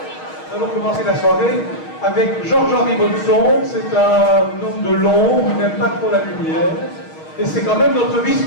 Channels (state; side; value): late; right; 6.4 ms